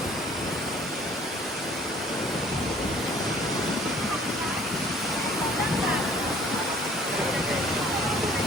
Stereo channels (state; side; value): normal; both; correlation 0.55